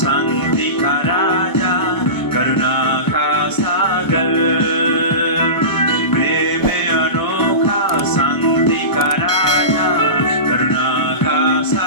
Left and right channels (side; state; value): right; late; 1.2 ms